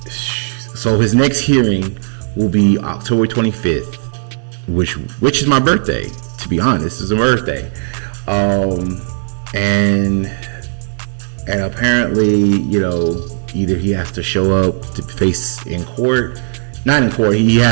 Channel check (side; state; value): left; silent; 67 dB below the other